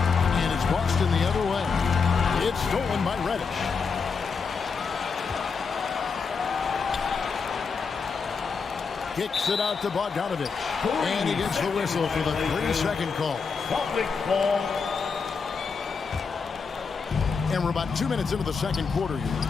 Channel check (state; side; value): quieter; right; 5.3 dB